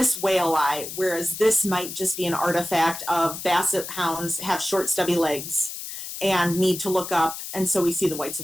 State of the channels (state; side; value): noise; left; hiss, 8 dB below the sound